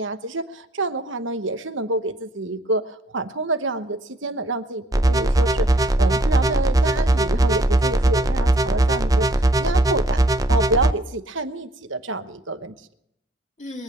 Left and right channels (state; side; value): normal; both; correlation 0.63